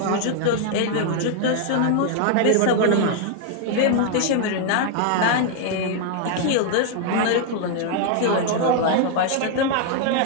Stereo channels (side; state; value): both; different; correlation 0.00